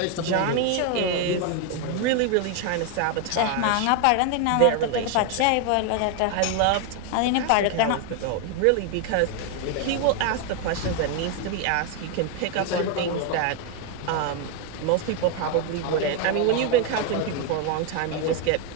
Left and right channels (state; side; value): different; both; correlation 0.01